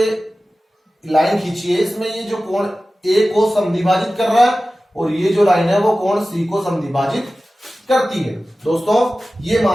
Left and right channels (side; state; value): both; normal; correlation 0.96